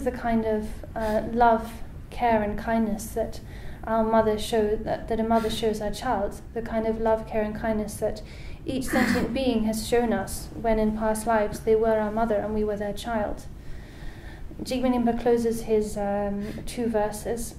the kind of love, care and kindness that a mother shows her child, the kind of love, care and kindness that each sentient being has shown us when in past lives they were our mother and we were their child. Jigme Nimpa closes his 2 verses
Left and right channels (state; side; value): identical; both; correlation 1.00